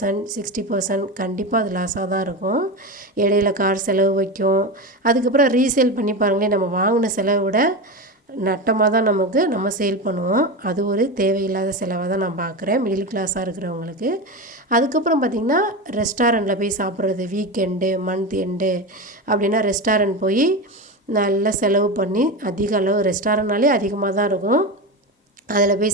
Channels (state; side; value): normal; both; correlation 0.21